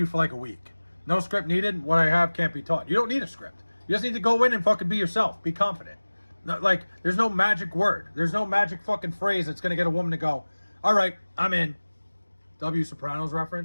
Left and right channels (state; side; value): inverted; both; correlation -1.00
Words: for like a week. No script needed. What I have can't be taught. You don't need a script. You just need to go in and fucking be yourself. Be confident. Like, there's no magic word. There's no magic fucking phrase that's going to get a woman to go, all right, I'm in. W. Sopranos